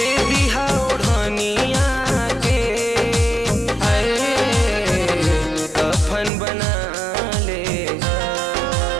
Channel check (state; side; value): drops out; left; at 6.3 s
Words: दीहा ओढ़निया के, अरे कफन बना ले हा।